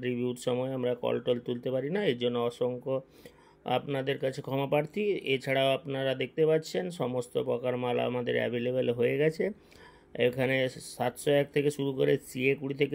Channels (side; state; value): both; identical; correlation 1.00